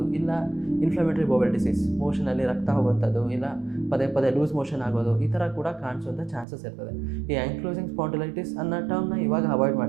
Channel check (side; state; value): left; drops out; at 6.5 s